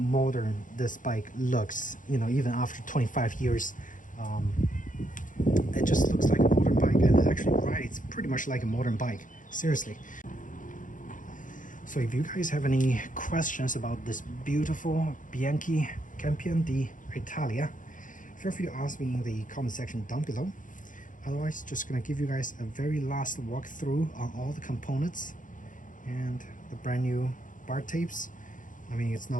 this bike looks. You know, even after 25 years, it just looks like a modern bike, and it actually rides pretty much like a modern bike. Seriously. So if you guys have any questions about this beautiful Bianchi Campione D'Italia, feel free to ask me in the comment section down below. Otherwise, just gonna give you guys a very last walkthrough on all the components and the brand new bar tapes. I mean, it's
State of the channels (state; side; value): late; right; 0.38 ms